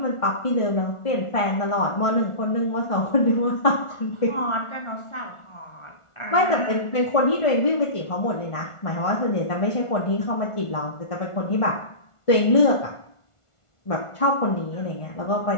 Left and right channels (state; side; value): late; right; 1.4 ms